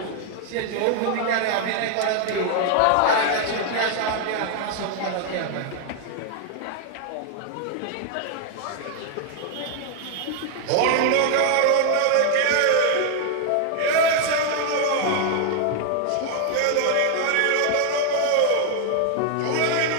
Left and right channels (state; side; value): different; both; correlation 0.00